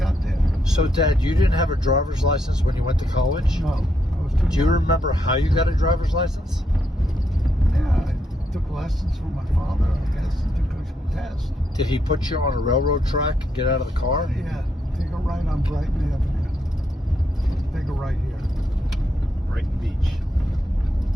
there. So, Dad, you didn't have a driver's license when you went to college? No, I was too Do you young. remember how you got a driver's license? Yeah, I took lessons from my father, I guess, and took a test. Did he put you on a railroad track and get out of the car? Yeah, take a right on Brighton Avenue. Take a right here, Brighton Beach.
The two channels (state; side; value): normal; both; correlation 0.79